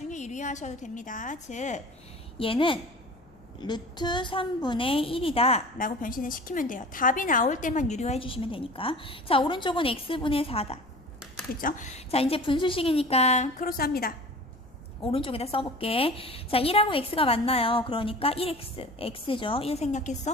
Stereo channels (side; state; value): left; noise; rumble, 30 dB below the sound